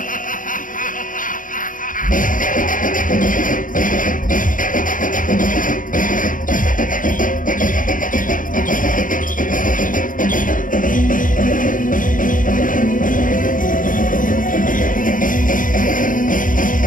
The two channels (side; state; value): right; late; 0.39 ms